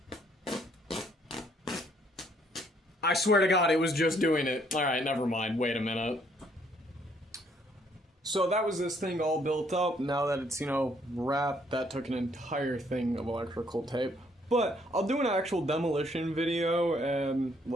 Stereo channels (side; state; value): both; normal; correlation 0.66